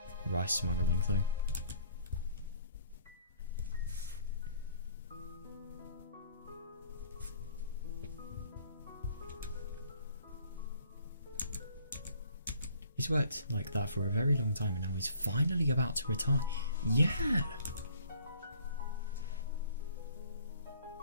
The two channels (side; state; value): both; inverted; correlation -0.57